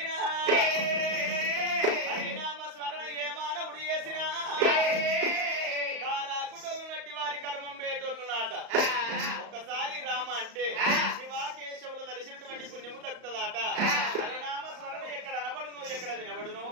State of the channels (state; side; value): late; left; 35 ms